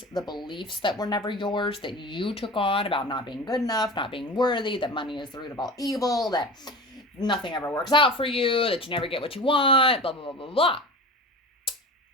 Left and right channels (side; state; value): both; normal; correlation 0.33